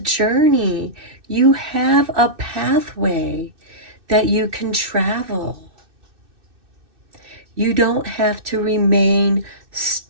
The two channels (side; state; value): left; late; 2.6 ms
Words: you have a pathway that you can travel. You don't have to remain